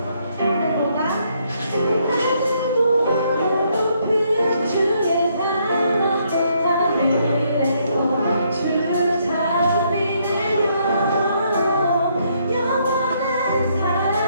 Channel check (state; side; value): inverted; both; correlation -0.72